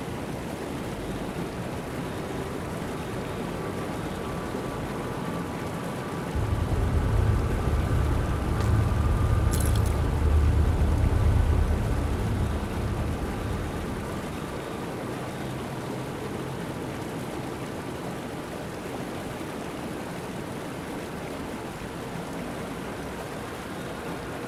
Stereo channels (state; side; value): identical; both; correlation 1.00